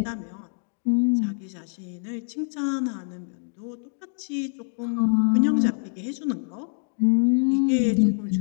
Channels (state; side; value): silent; right; 56 dB below the other